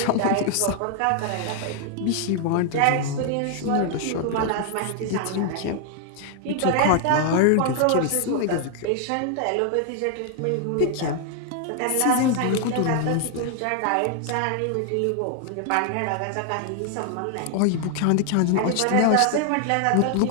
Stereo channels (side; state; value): both; different; correlation 0.00